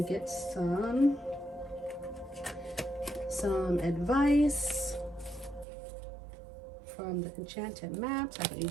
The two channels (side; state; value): left; drops out; at 5.7 s